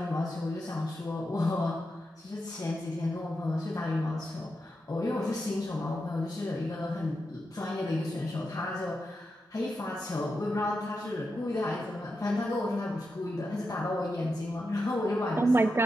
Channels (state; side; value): normal; both; correlation 0.87